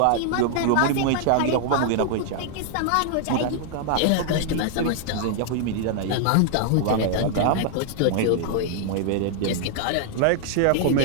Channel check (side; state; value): both; different; correlation 0.00